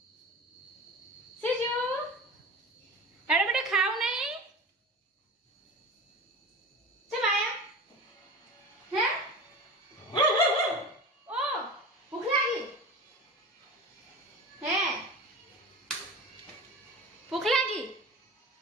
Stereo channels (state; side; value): normal; both; correlation 0.33